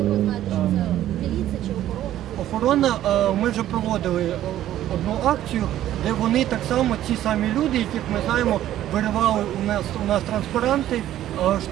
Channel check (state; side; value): quieter; left; 12.7 dB